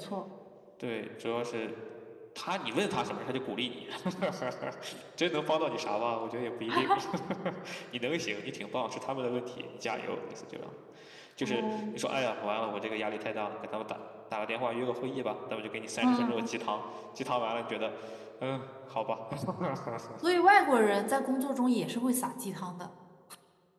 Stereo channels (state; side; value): identical; both; correlation 1.00